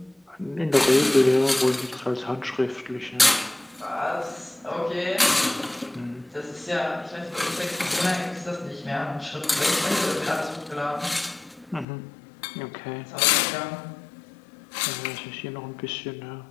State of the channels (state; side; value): drops out; right; at 11.9 s